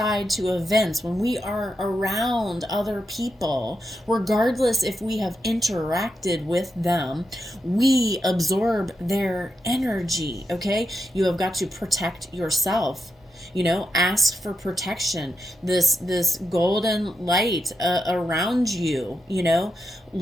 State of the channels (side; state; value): both; normal; correlation 0.86